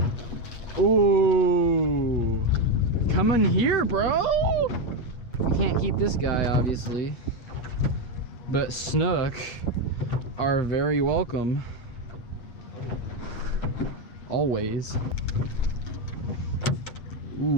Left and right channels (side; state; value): right; late; 8.1 ms